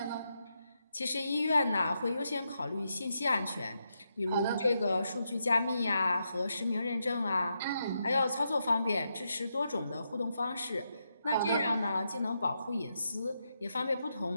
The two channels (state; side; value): inverted; both; correlation -0.83